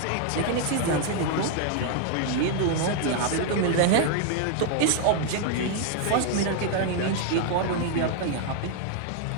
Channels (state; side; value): different; both; correlation 0.00